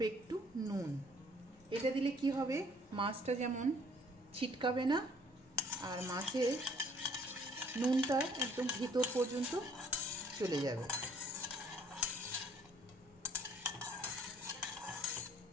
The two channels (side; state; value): both; normal; correlation 0.60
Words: একটু নুন। এটা দিলে কি হবে, মাছটা যেমন ছিটকাবে না আর মাছের নুনটা একদম ভিতর পর্যন্ত চলে যাবে।